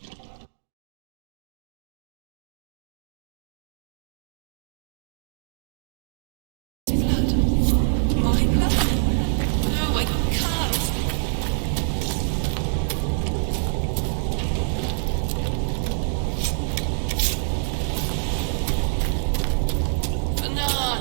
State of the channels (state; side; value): silent; left; digital silence